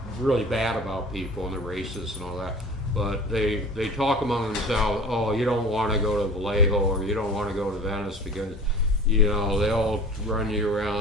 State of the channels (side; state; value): both; normal; correlation 0.39